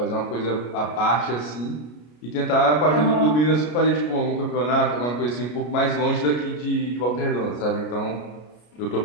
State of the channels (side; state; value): right; late; 33 ms